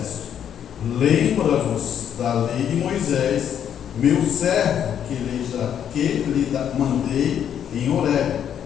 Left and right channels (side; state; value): right; quieter; 9.2 dB